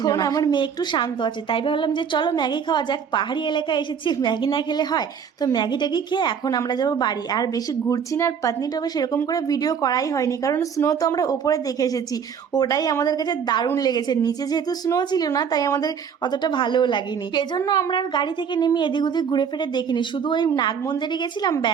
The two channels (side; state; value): left; quieter; 7.1 dB